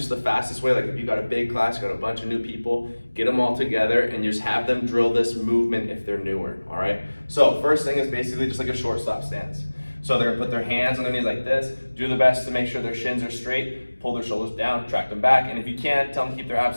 the fastest way, like if you got a big class, you got a bunch of new people, get them all together and just have them drill this movement if they're newer, all right? So first thing is basically just like a shortstop stance. So they're gonna put their hands on their knees like this, do their best to make sure their shins are straight, pull their shoulders down, track them back, and if you can, tell them to keep their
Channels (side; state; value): both; inverted; correlation -1.00